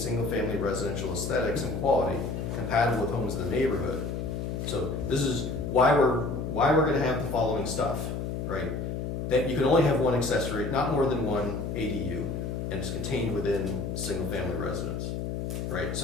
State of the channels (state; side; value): noise; left; hum, 3 dB below the sound